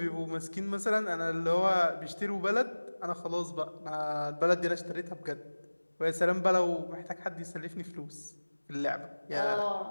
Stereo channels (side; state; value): both; inverted; correlation -1.00